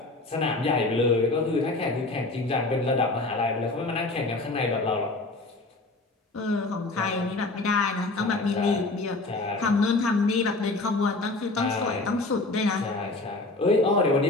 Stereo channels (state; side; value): quieter; right; 3.1 dB